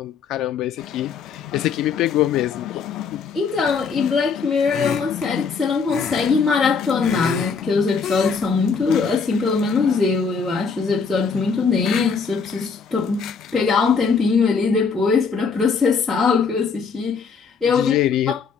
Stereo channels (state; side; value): quieter; right; 5.5 dB